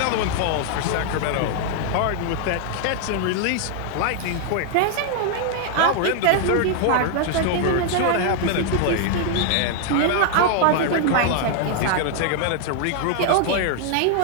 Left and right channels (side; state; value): both; different; correlation 0.00